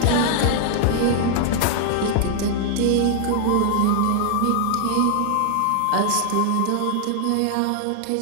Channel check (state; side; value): different; both; correlation 0.00